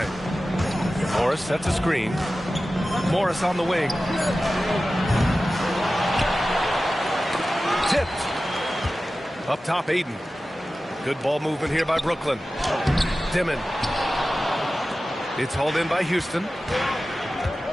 Morris sets a screen. Morris on the wing. Tipped. Up top, Aiden. Good ball movement here by Brooklyn. Dimon. It's hauled in by Houston.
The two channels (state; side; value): normal; both; correlation 0.95